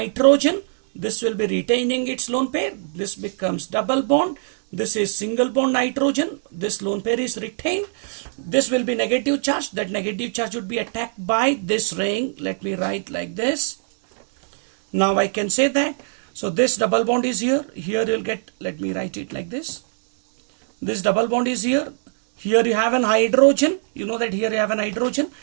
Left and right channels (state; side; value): silent; left; digital silence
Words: This will be retaining its lone pair. This becomes double bond. This is single bond nitrogen. This lone pair is retained. This will be negative charge. That negative charge would be attacked by this ring. Let me write like this. Now I can say that. So this double bond is here. Here you'll get, let me write it like this. This double bond is here. Here you have an hydrogen. You know that here you have an hydrogen.